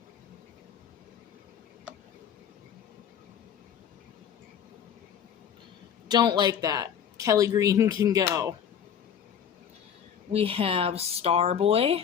Don't like that. Kelly Green can go. We have Starboy.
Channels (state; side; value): quieter; right; 8.4 dB